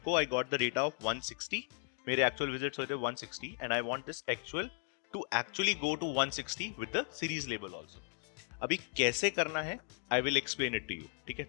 को I got the data of 160. मेरे actual visits हुए थे 160 and I want this actual to actually go to 160 with the series label also. अभी कैसे करना है I will explain it to you. ठीक है,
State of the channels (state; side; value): quieter; right; 38.2 dB